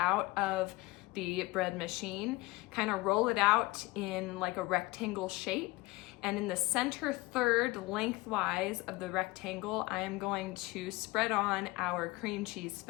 of the bread machine, kind of roll it out in like a rectangle shape, and in the center third lengthwise of the rectangle, I am going to spread on our cream cheese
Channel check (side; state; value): right; quieter; 21.6 dB